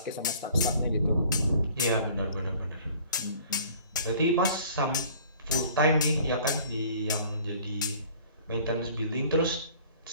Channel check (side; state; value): both; inverted; correlation -0.51